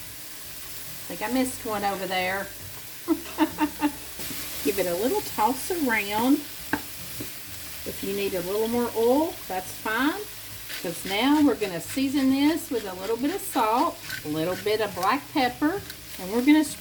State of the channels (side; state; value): both; identical; correlation 1.00